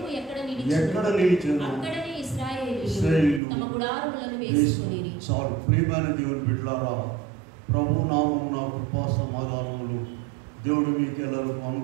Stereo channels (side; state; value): left; drops out; at 3.4 s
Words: ఎక్కడ నిలిచెను అక్కడనే ఇశ్రాయేలీయులు తమ గుడారములను వేసుకొనిరి. చాలు. ప్రియమైన దేవుని బిడ్డలారా, ప్రభు నామమున కృపా సమాధానములు దేవుడు మీకు ఎల్లరికూ